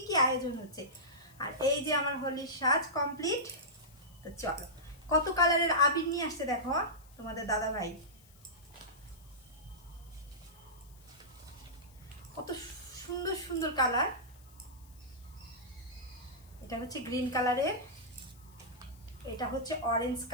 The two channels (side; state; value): left; noise; hiss, 26 dB below the sound